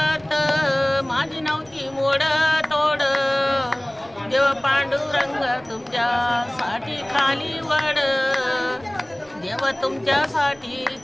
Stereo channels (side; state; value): right; noise; rumble, 30 dB below the sound